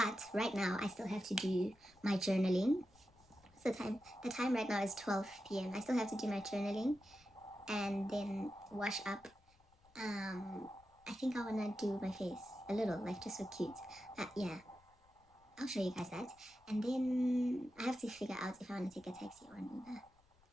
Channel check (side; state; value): left; noise; rumble, 30 dB below the sound